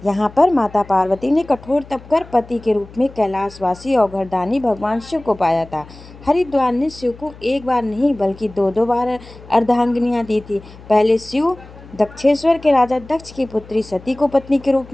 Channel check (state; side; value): noise; left; hum, 20 dB below the sound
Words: यहाँ पर माता पार्वती ने कठोर तप कर पति के रूप में कैलाशवासी औघड़दानी भगवान शिव को पाया था। हरिद्वार ने शिव को एक बार नहीं बल्कि दो दो बार अर्धांगिनियाँ दी थी। पहले शिव दक्षेश्वर के राजा दक्ष की पुत्री सती को पत्नी के रूप